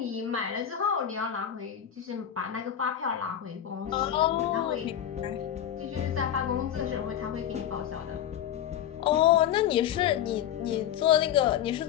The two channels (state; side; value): quieter; right; 10.2 dB